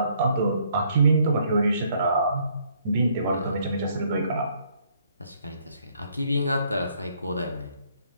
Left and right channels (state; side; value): inverted; both; correlation -0.67